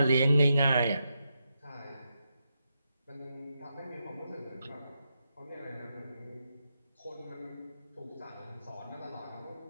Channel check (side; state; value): both; inverted; correlation -0.85